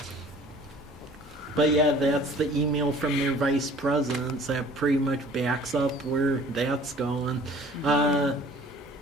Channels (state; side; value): normal; both; correlation 0.50